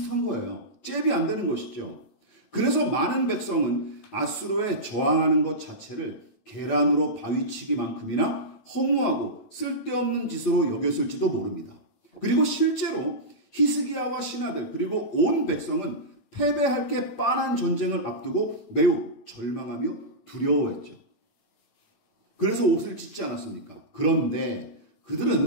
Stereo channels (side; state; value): right; late; 8.9 ms